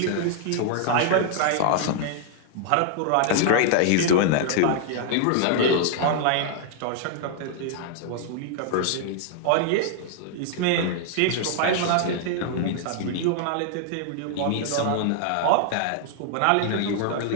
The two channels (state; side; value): different; both; correlation -0.01